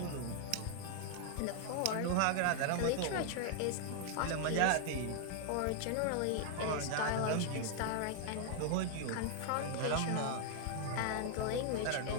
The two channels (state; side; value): different; both; correlation 0.00